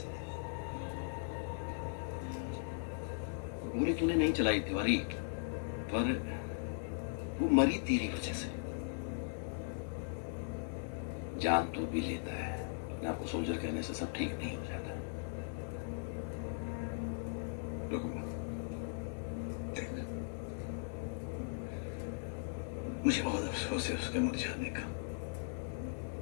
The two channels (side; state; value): right; silent; digital silence